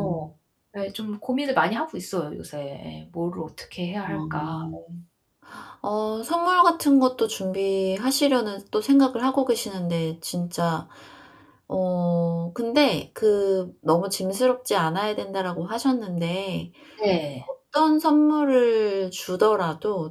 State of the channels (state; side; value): identical; both; correlation 1.00